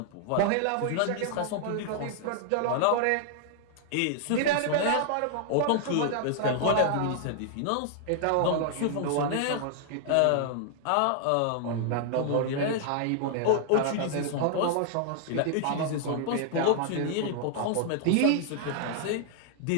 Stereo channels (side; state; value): both; different; correlation -0.01